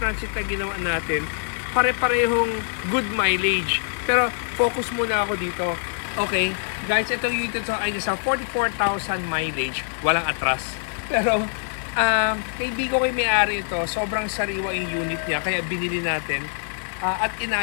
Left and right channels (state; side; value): silent; right; 56 dB below the other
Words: na ginawa natin, pare-parehong good mileage. Pero focus muna ako dito. Okay, guys, itong unit ito ay nasa 44,000 mileage. Walang atras. Pero, kaibigan ko may-ari ito. Sobrang sariwa yung unit niya. Kaya binili natin at